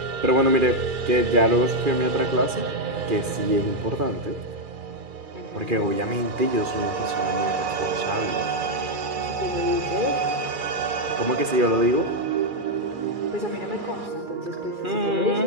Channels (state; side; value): late; left; 2.3 ms